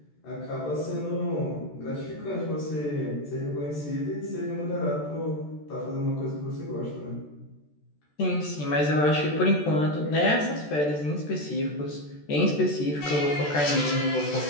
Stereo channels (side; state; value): right; late; 14 ms